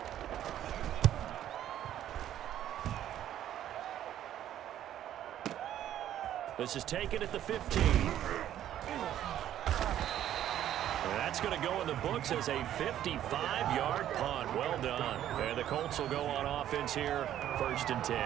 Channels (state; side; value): quieter; left; 11.6 dB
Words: This is taken at the 15. And that's going to go in the books as a 55-yard punt. Well done. And the Colts will go on offense here, 1st and 10.